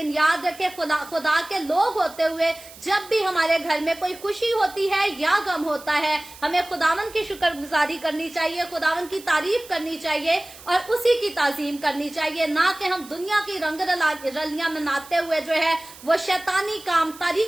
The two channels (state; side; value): noise; right; hiss, 19 dB below the sound